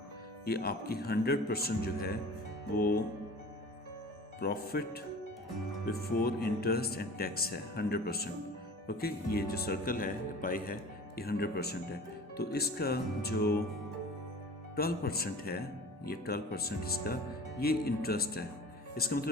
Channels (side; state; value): both; normal; correlation 0.42